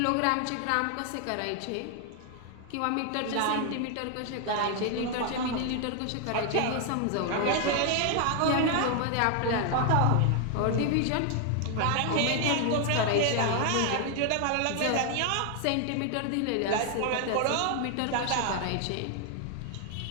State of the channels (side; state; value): both; different; correlation 0.00